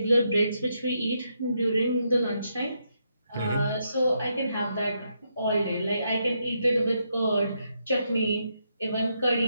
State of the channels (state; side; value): inverted; both; correlation -0.79